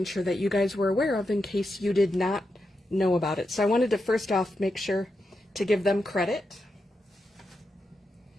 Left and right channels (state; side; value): normal; both; correlation 0.87